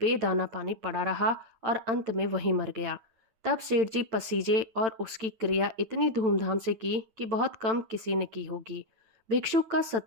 पानी पड़ा रहा और अंत में वहीं मर गया। तब सेठ जी पसीजे और उसकी क्रिया इतनी धूमधाम से की कि बहुत कम किसी ने की होगी। भिक्षुक का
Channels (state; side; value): late; left; 8.9 ms